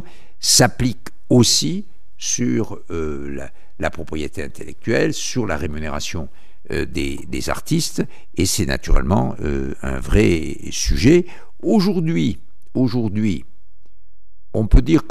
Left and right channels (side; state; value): both; identical; correlation 1.00